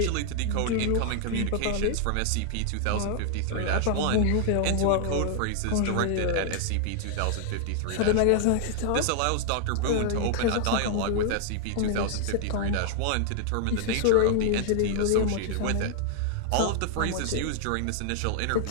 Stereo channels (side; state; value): both; different; correlation 0.00